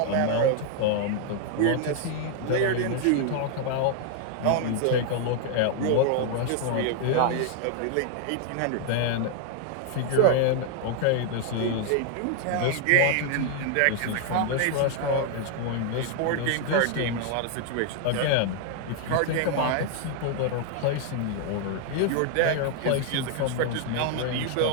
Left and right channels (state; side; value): different; both; correlation 0.00